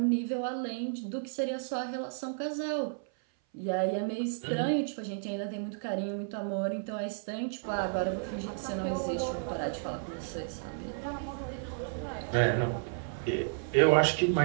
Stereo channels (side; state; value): left; silent; 56 dB below the other